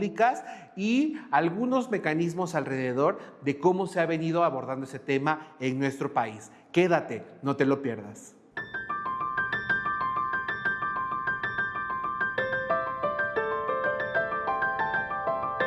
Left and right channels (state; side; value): identical; both; correlation 1.00